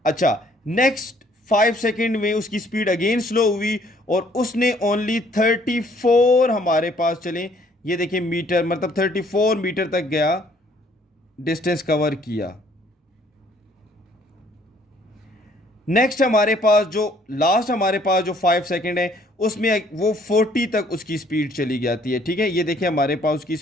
अच्छा नेक्स्ट 5 सेकेंड में उसकी स्पीड अगेन स्लो हुई और उसने ओनली 34 हमारे पास, चलें ये देखिए मीटर, मतलब 34 मीटर तक गया, डिस्टेंस कवर किया। नेक्स्ट हमारे पास जो लास्ट हमारे पास जो 5 सेकेंड है उसमें वो 40 तक उसकी स्पीड चली जाती है। ठीक है, ये देखिए हमारे पास उसकी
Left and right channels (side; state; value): both; normal; correlation 0.61